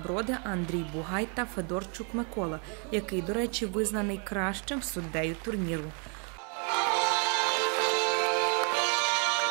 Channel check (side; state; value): left; quieter; 37.7 dB